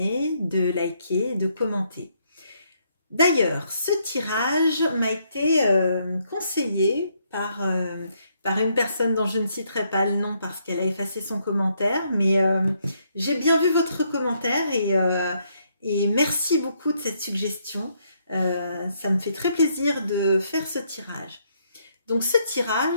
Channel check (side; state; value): both; inverted; correlation -0.73